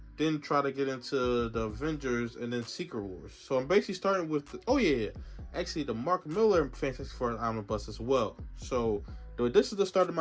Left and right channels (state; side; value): identical; both; correlation 1.00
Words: then try to get into the Avengers and then Secret Wars. So I'm basically starting with the, actually the Mark Miller Fantastic Four omnibus as well. So this is the start of